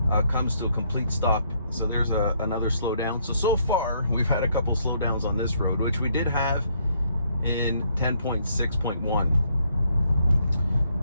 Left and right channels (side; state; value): both; inverted; correlation -0.70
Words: comes to a complete stop. So there's another slowdown. So far, we've had a couple slowdowns on this road, which we did have in 10.6.1.